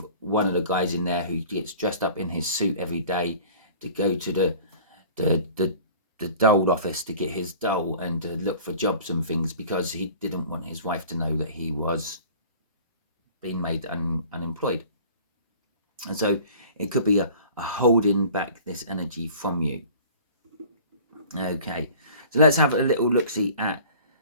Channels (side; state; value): both; inverted; correlation -0.46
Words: one of the guys in there who gets dressed up in his suit every day to go to the dole office to get his dole and to look for jobs and things, because he didn't want his wife to know that he was being made unemployed. And so it could be a holding back this energy from you. Okay, so let's have a little look-see at